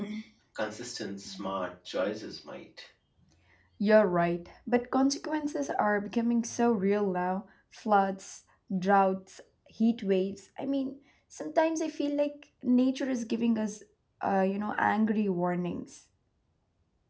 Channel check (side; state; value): both; identical; correlation 1.00